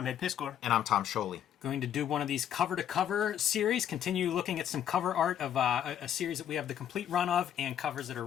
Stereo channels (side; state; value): right; quieter; 9.9 dB